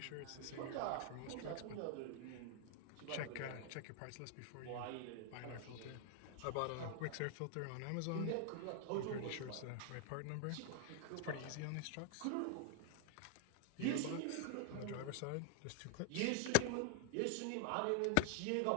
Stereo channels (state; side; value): different; both; correlation 0.00